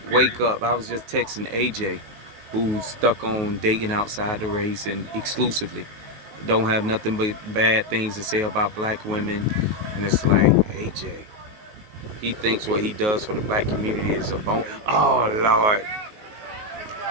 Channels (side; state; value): left; late; 19 ms